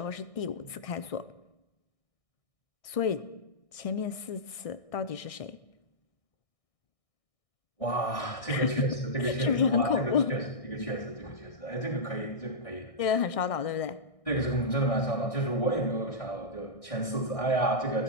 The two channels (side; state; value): right; late; 1.6 ms